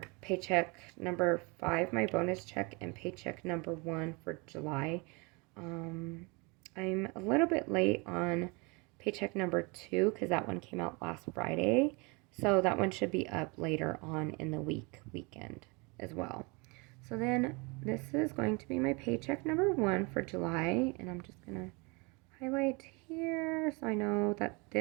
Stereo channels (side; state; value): left; quieter; 29.1 dB